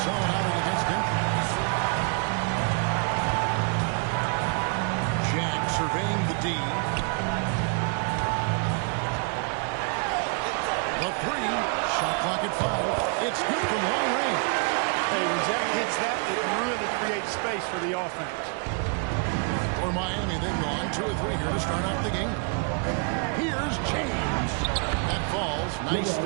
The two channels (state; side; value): quieter; left; 38.7 dB